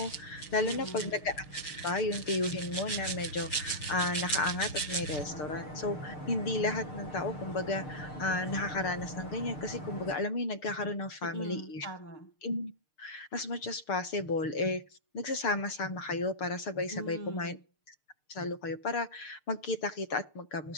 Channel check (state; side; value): late; right; 6.6 ms